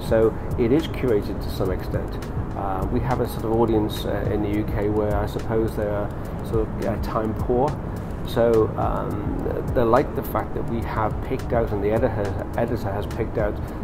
So it is curated to some extent. We have a sort of audience in the UK where I suppose they are sort of time poor. So they like the fact that we have picked out, and the editor has picked out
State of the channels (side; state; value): both; identical; correlation 1.00